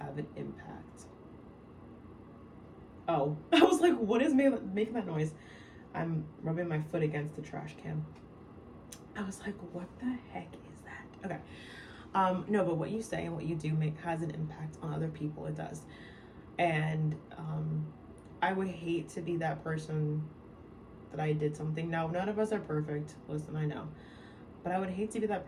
an impact. Oh, I was like, what is making that noise? I'm rubbing my foot against the trash can. I was like, what the heck is that? Okay. No, but what you say and what you do has an impact on other people. It does. And I would hate to be that person that I did something. Now, none of us are perfect. Listen, I know. But I would hate to be that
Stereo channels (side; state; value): both; identical; correlation 1.00